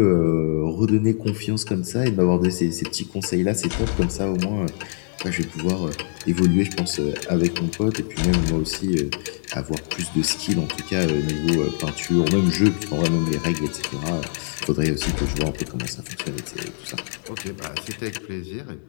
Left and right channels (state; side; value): silent; right; 63 dB below the other